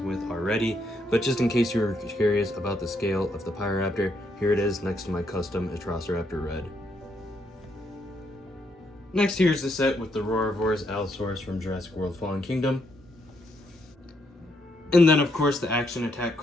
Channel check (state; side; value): normal; both; correlation 0.75